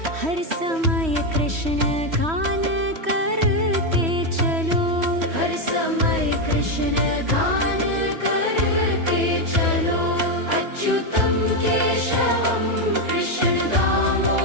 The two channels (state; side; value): late; left; 3.1 ms